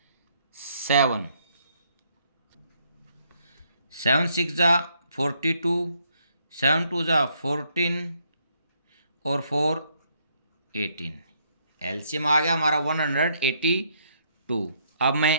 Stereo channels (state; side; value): inverted; both; correlation -0.71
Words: 7 7 6 जा 42 7 2 जा 14 और 4 18। एलसीएम आ गया हमारा 182। अब मैं